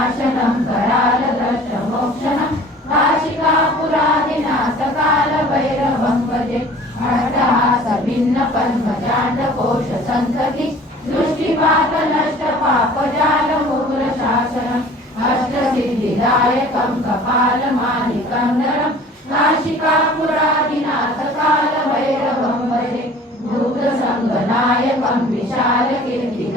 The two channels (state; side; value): normal; both; correlation 0.47